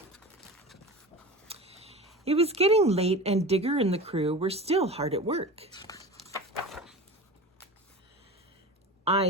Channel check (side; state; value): both; normal; correlation 0.32